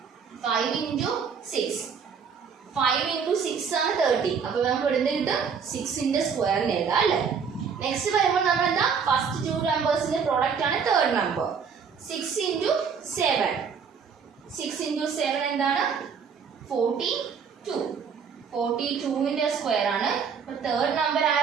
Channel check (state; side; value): quieter; left; 6.4 dB